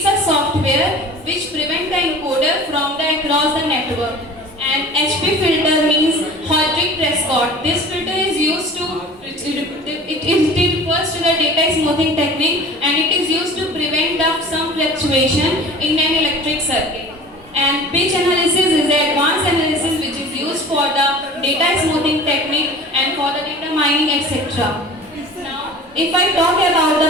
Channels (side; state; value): both; normal; correlation 0.41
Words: a software which prevents the encoder from the across the network. And HP filter means Hodrick Prescott. This filter is used to it refers to the data smoothing technique, and it is used to prevent some fluctuation in an electric circuit. And pitch analysis is the advanced analysis which is used for the data smoothing technique and for the data mining, etc. Now, if I talk about